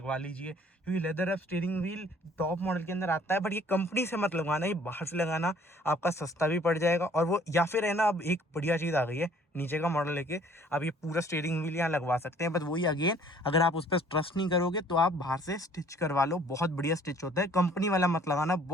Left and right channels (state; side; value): normal; both; correlation 0.57